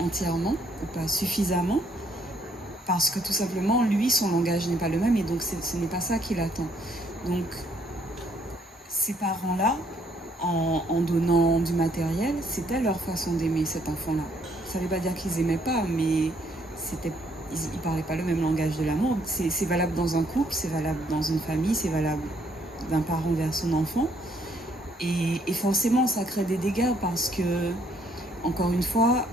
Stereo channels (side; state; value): both; normal; correlation 0.68